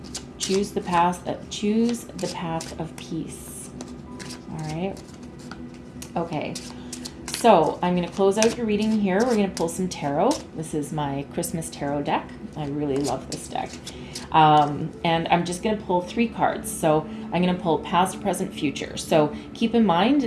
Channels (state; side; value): identical; both; correlation 1.00